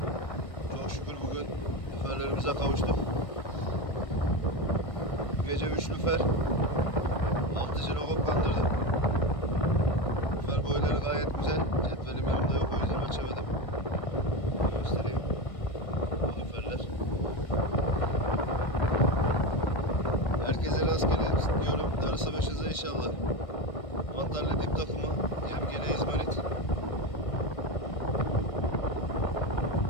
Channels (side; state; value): right; late; 1.6 ms